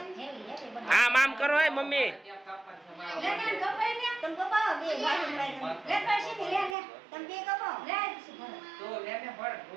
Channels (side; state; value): left; drops out; at 6.8 s